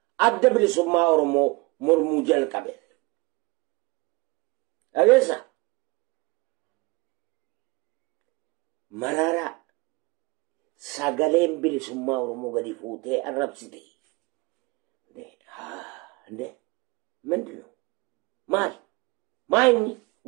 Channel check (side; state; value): left; quieter; 25.1 dB